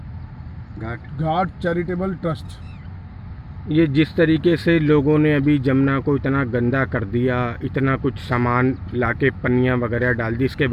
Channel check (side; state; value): both; identical; correlation 1.00